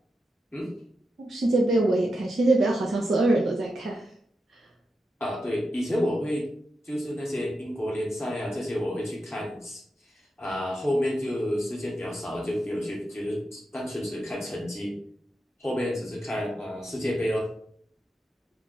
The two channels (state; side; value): normal; both; correlation 0.88